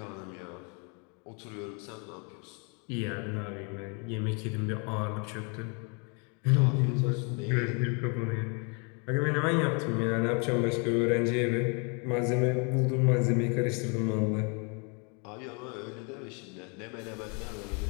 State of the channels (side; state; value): right; quieter; 35.4 dB